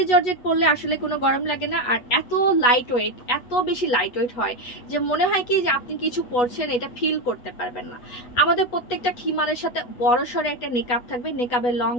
জর্জেট পরলে আসলে কোনো গরম লাগে না, আর এত লাইট ওয়েট, এত বেশি লাইট ওয়েট হয় যে মনে হয় কি যে আপনি কিছু পরছেন, এটা ফিল করতে পারবেন না। আমাদের প্রত্যেকটা খিমারের সাথে বড় সড়ো একটা নেকআপ থাকবে, নেকআপের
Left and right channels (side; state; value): right; late; 8.2 ms